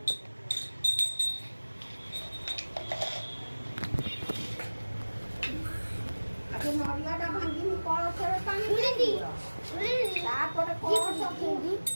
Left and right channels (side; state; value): both; inverted; correlation -1.00